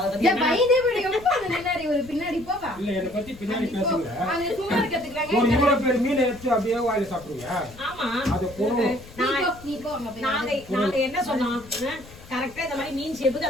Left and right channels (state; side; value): noise; left; rumble, 19 dB below the sound